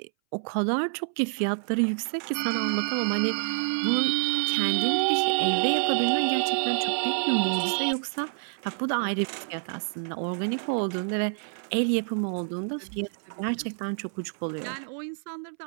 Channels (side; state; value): left; silent; 60 dB below the other